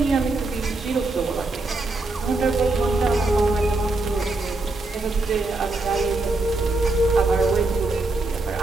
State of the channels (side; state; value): left; quieter; 3.1 dB